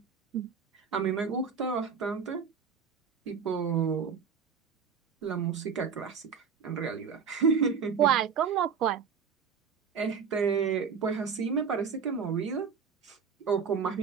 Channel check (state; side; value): quieter; left; 6.3 dB